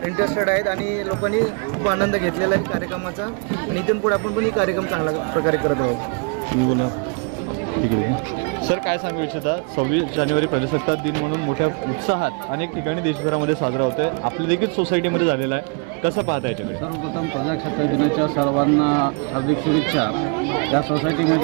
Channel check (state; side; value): quieter; left; 37.1 dB